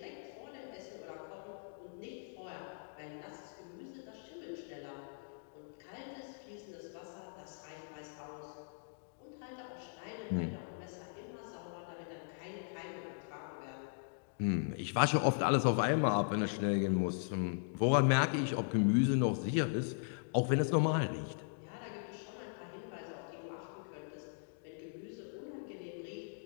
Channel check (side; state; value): right; silent; digital silence